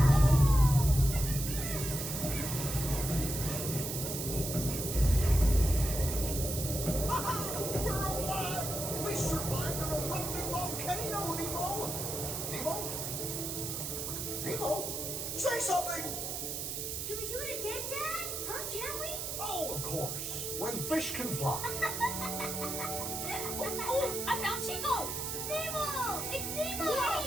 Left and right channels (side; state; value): right; noise; hiss, 4 dB below the sound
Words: We're alive! We survived an erupting volcano, Nemo! Nemo? Nemo? Say something! Can we do it again, Dad? Huh? Can we? Oh, of course. When fish can fly. Oh, I found Chico. Nemo! It's Nemo!